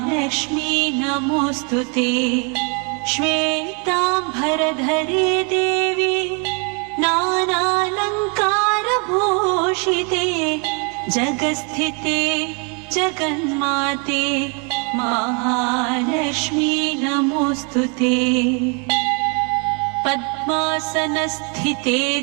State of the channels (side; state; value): left; quieter; 35.3 dB